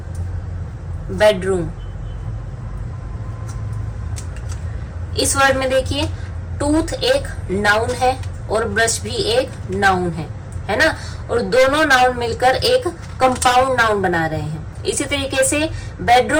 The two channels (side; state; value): both; identical; correlation 1.00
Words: बेडरूम। इस वर्ड में देखिए, टूथ एक नाउन है और ब्रश भी एक नाउन है ना, और दोनों नाउन मिलकर एक कंपाउंड नाउन बना रहे हैं। इसी तरीके से